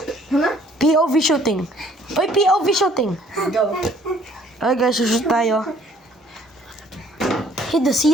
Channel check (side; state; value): both; normal; correlation 0.59